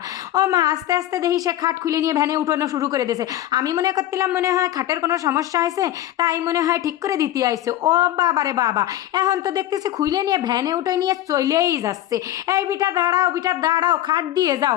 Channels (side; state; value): right; quieter; 13.4 dB